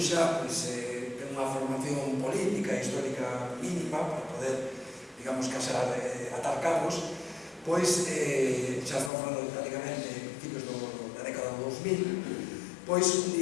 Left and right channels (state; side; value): drops out; right; at 9.1 s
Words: ten unha formación política e histórica mínima para poder, digamos, casar, atar cabos, pois xa estamos falando prácticamente de principios da década do 2000, pois un